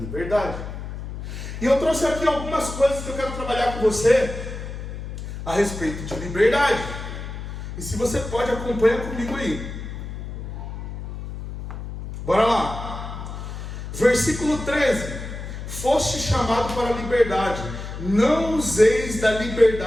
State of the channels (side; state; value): left; noise; hum, 8 dB below the sound